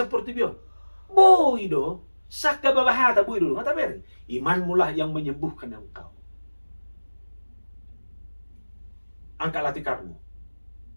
bion. Boy do, sakka babahata boy do. Ngata beri, iman mulah yang menyembuhkan engkau. Angkatlah tikarmu.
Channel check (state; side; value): inverted; both; correlation -1.00